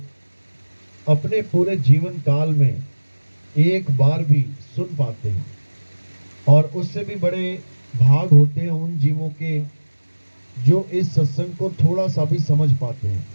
अपने पूरे जीवन काल में एक बार भी सुन पाते हैं, और उससे भी बड़े भाग होते हैं उन जीवों के जो इस सत्संग को थोड़ा सा भी समझ पाते हैं,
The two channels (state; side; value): inverted; both; correlation -1.00